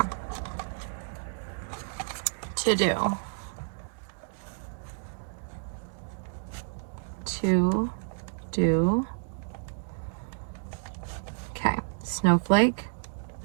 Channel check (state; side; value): silent; left; digital silence